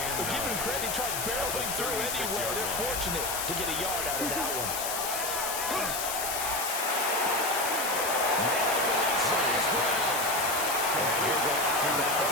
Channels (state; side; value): noise; left; hiss, 2 dB below the sound